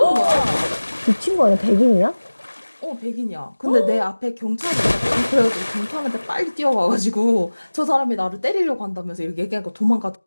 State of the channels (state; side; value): inverted; both; correlation -1.00